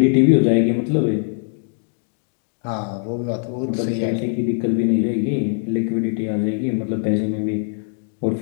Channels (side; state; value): right; silent; digital silence